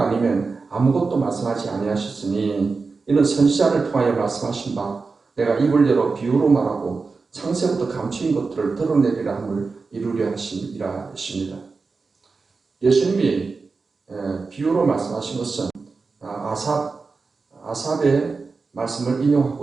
아니면 아무것도 말씀하지 아니하셨으니 이는 선지자를 통하여 말씀하신 바 내가 입을 열어 비유로 말하고 창세부터 감추인 것들을 드러내리라 함을 이루려 하심이라 했습니다. 예수님이 비유로 말씀하신 것은 아삽의 말씀을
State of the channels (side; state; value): left; quieter; 4.3 dB